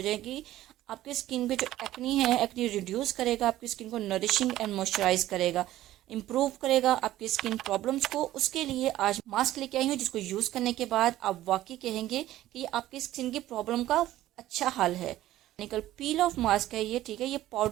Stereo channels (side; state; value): left; quieter; 14.5 dB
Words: जाएंगी। आपकी स्किन पे जो एक्नी है, एक्नी रिड्यूस करेगा, आपकी स्किन को नरिशिंग एंड मॉइस्चराइज करेगा, इम्प्रूव करेगा आपकी स्किन प्रॉब्लम्स को। उसके लिए आज मास्क लेके आई हूँ जिसको यूज़ करने के बाद आप वाकई कहेंगे कि आपकी स्किन की प्रॉब्लम का अच्छा हल है। निकल पील ऑफ मास्क है ये, ठीक है, ये